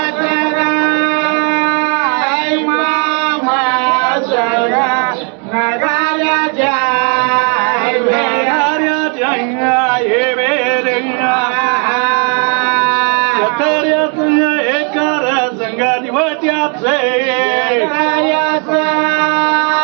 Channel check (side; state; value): left; quieter; 38.6 dB